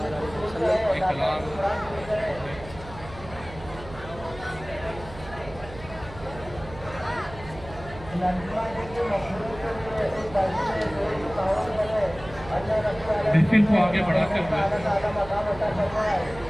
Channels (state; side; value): noise; right; hum, 15 dB below the sound